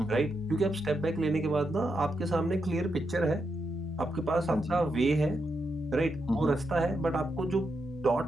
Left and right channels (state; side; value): normal; both; correlation 0.83